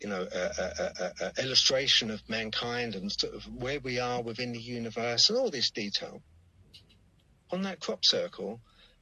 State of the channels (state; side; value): identical; both; correlation 1.00